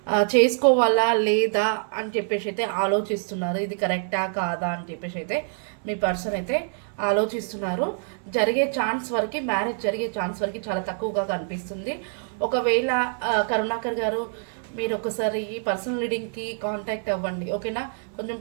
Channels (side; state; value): left; silent; 61 dB below the other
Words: చేసుకోవాలా లేదా అని చెప్పేసి అయితే ఆలోచిస్తున్నారు. ఇది కరెక్టా కాదా అని చెప్పేసి అయితే మీ పర్సన్ అయితే ఆలోచిస్తున్నారు. జరిగే ఛాన్స్ వరకు, మ్యారేజ్ జరిగే ఛాన్స్ వరకు చాలా తక్కువగా కనిపిస్తుంది. ఒకవేళ కరుణాకర్ గారు మీరు ఒకసారి ఈ పర్సనల్ రీడింగ్కి కాంటాక్ట్ అవ్వండి, ఓకేనా? కొంచెం